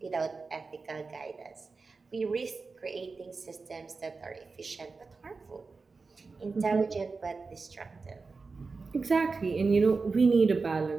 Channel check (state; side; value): quieter; left; 4.3 dB